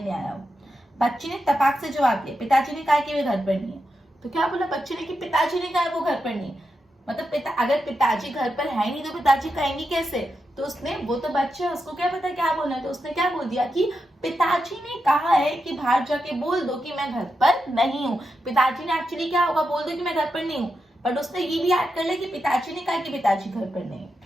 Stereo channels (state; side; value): normal; both; correlation 0.87